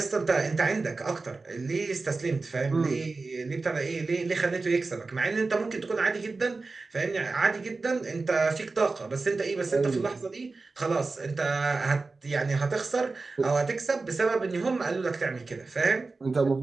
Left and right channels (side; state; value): left; quieter; 3.8 dB